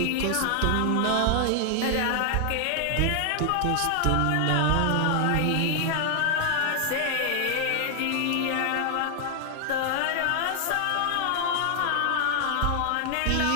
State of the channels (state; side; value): different; both; correlation 0.00